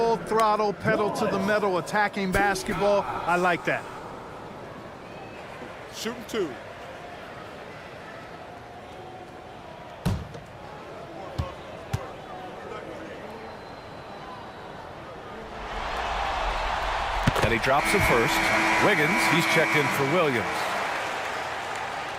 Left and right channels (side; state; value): both; identical; correlation 1.00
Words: throttle, pedal to the metal, attacking basketball. I like that. Shooting 2. And he drops it first. Wiggins, he's checked in for Williams.